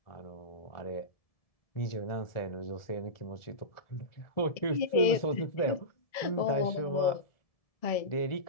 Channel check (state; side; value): late; right; 1.7 ms